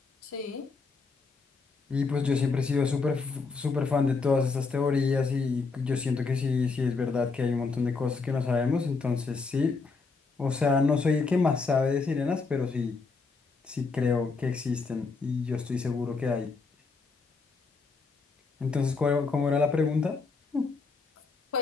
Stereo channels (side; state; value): right; quieter; 4.4 dB